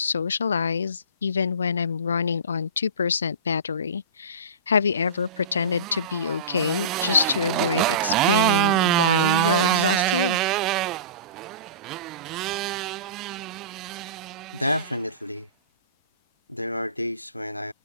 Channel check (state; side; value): inverted; both; correlation -0.31